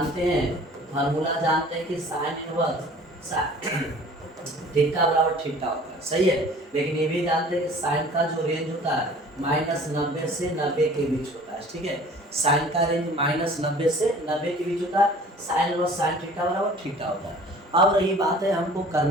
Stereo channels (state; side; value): normal; both; correlation 0.48